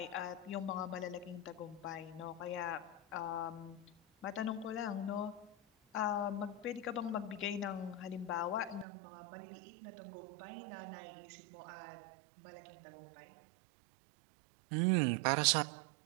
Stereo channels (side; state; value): left; drops out; at 8.8 s